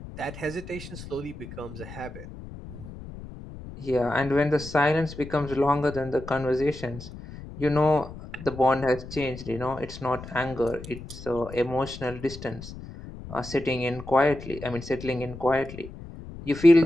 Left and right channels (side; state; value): left; noise; rumble, 13 dB below the sound